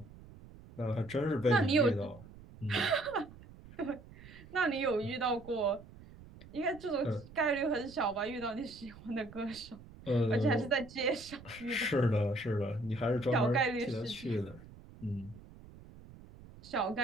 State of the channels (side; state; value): right; noise; rumble, 19 dB below the sound